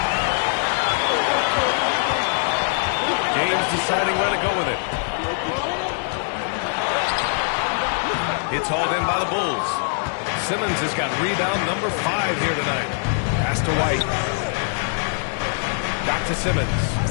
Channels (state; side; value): silent; right; digital silence